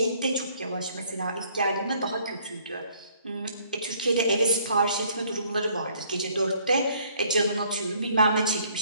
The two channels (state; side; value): inverted; both; correlation -0.63